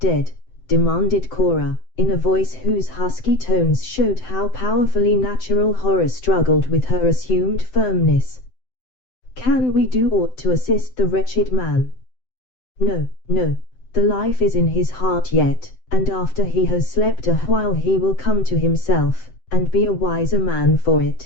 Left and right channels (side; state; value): right; late; 7.8 ms